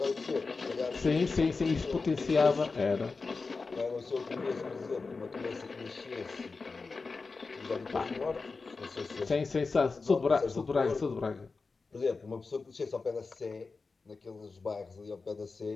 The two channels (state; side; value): quieter; right; 4.2 dB